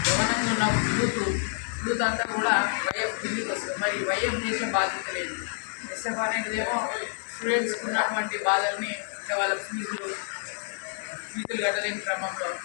గమనంగా ఉన్న యూత్ అంతా కూడా వైఎఫ్ కిందికి వస్తుంది. మరి వైఎఫ్ చేసే బాధ్యత లేదు. ఎస్ఎఫ్ అనేటిదేమో స్టూడెంట్స్కి ఉన్నటువంటి బాధల్ని అంటే వాళ్ళ ఫీజులు కట్టలేని క్రమంలో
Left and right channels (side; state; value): right; silent; digital silence